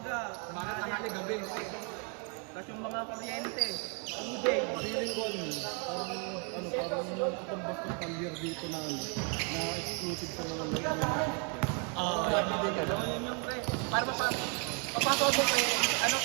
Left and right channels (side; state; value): left; quieter; 37.6 dB